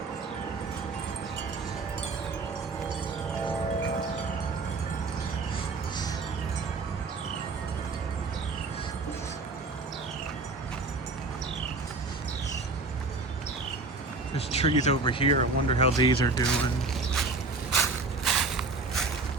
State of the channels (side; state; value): left; quieter; 3.7 dB